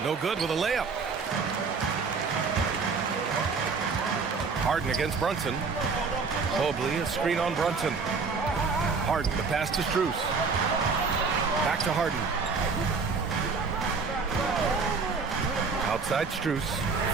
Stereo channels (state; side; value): quieter; left; 4.8 dB